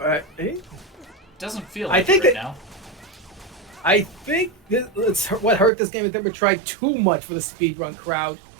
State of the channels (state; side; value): drops out; left; at 5.7 s